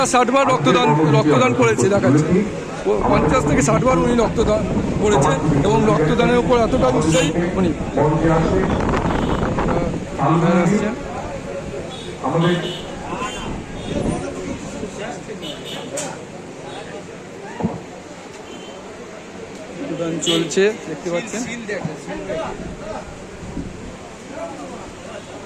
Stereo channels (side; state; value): both; identical; correlation 1.00